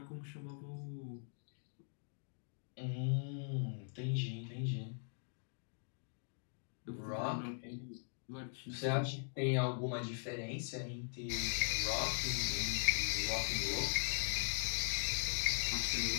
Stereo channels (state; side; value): silent; right; digital silence